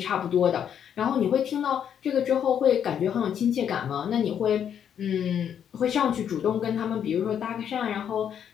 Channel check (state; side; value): quieter; right; 8.8 dB